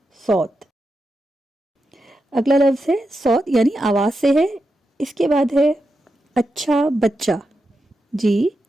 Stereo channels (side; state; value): both; normal; correlation 0.88